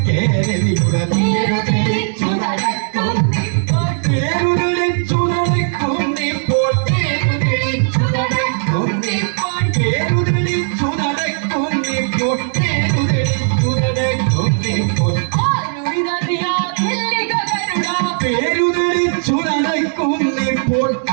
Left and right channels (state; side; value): silent; left; 66 dB below the other